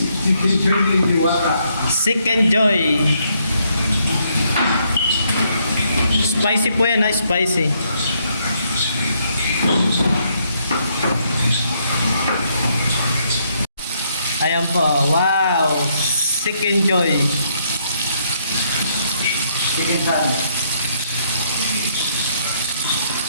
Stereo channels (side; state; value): both; inverted; correlation -0.72